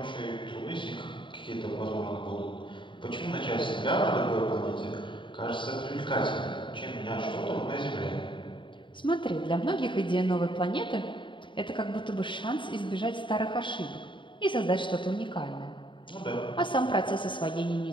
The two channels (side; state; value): right; late; 0.24 ms